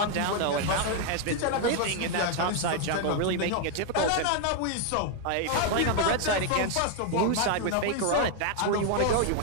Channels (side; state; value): both; different; correlation 0.00